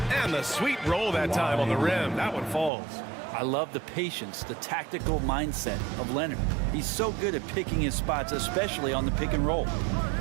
and the sweet roll that time on the rim. That one falls. I love the patience, the tactical mindset of Leonard. He's so good at picking his spots, especially on the pick and roll.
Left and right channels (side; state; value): left; drops out; at 2.7 s